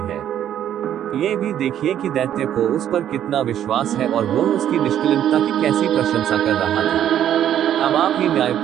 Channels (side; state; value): left; quieter; 10.6 dB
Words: है। ये भी देखिए कि दैत्य को उस पर कितना विश्वास है और वह उसकी निष्कलंकता की कैसी प्रशंसा कर रहा था। अब आप ही